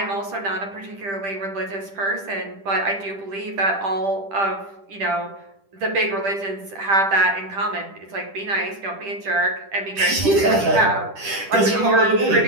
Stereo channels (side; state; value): left; late; 10 ms